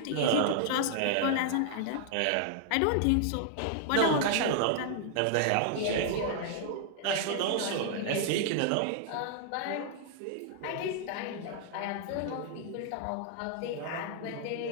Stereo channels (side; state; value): both; different; correlation 0.00